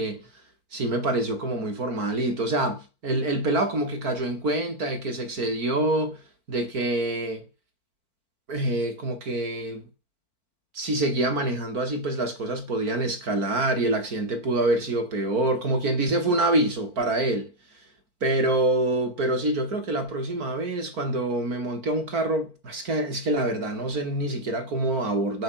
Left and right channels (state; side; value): late; left; 4.5 ms